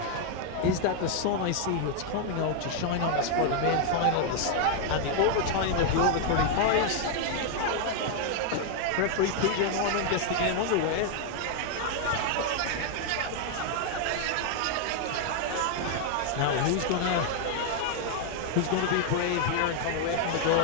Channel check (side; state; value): both; different; correlation 0.00